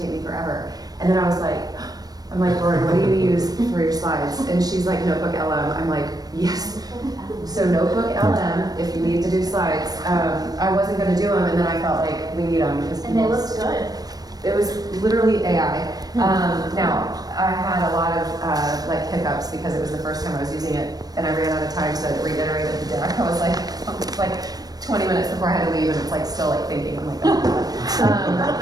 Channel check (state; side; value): late; left; 0.19 ms